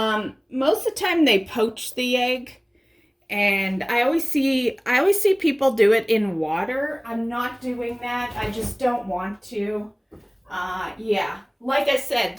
of the time they poach the egg. And I always see people do it in water. I'm not doing that. I just don't want to. Yeah. Like I said,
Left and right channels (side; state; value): both; identical; correlation 1.00